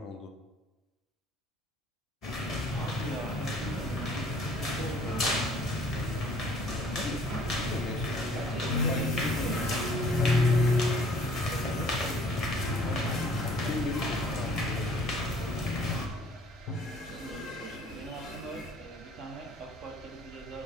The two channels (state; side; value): normal; both; correlation 0.56